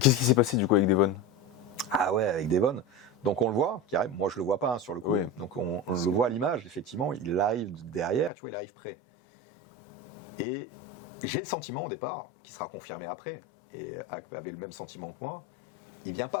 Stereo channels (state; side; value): drops out; right; at 8.3 s